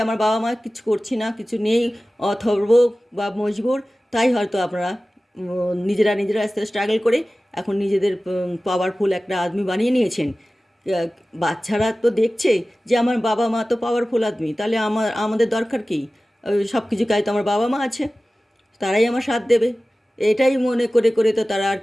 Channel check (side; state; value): both; normal; correlation 0.96